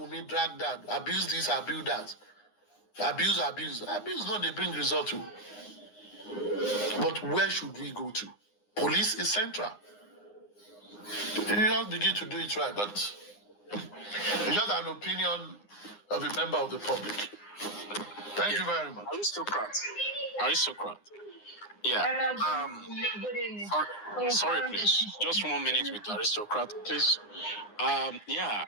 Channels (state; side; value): late; right; 9.7 ms